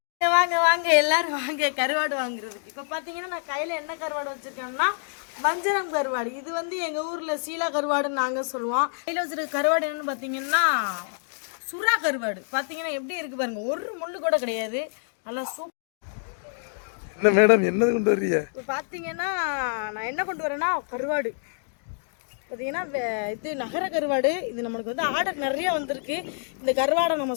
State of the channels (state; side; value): silent; right; digital silence